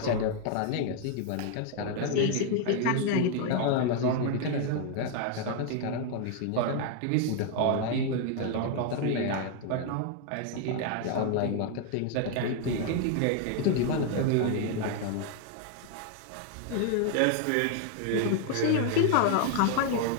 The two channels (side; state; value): both; different; correlation 0.00